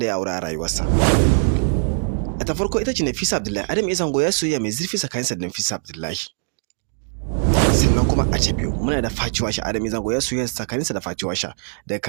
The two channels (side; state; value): left; silent; digital silence